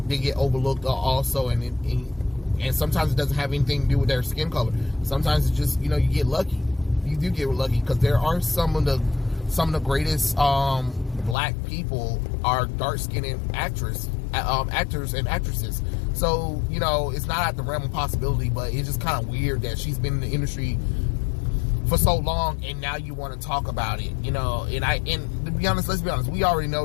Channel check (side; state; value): right; drops out; at 11.4 s